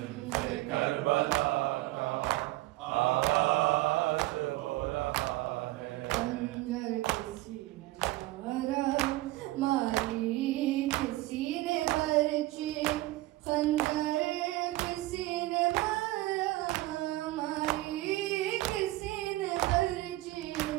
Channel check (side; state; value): left; quieter; 18.4 dB